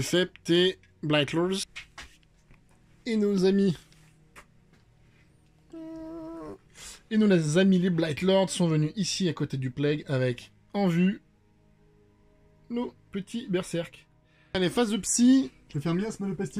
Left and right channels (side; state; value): both; identical; correlation 1.00